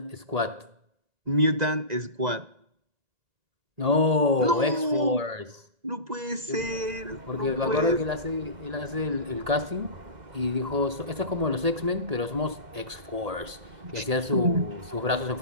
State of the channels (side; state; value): left; late; 1.8 ms